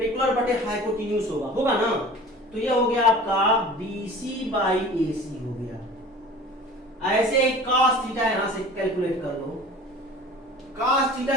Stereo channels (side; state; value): both; normal; correlation 0.42